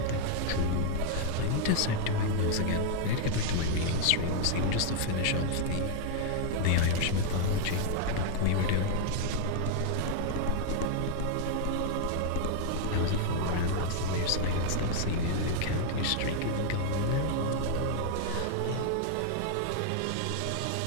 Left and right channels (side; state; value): both; different; correlation 0.00